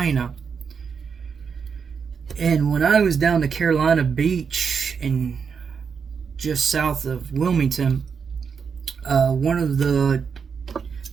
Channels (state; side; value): quieter; left; 6.2 dB